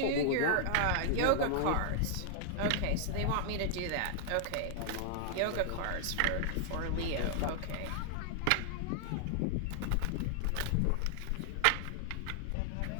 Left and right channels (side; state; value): both; different; correlation 0.00